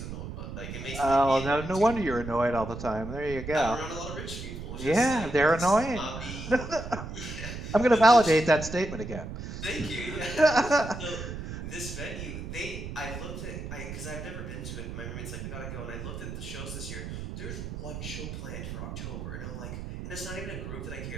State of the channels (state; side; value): noise; right; rumble, 8 dB below the sound